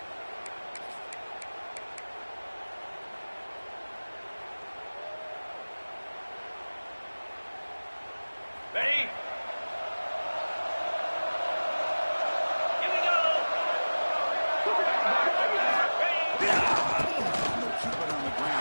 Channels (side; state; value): both; inverted; correlation -1.00